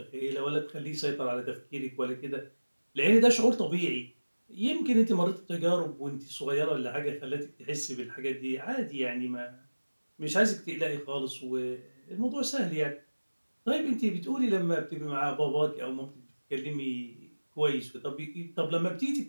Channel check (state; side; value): inverted; both; correlation -1.00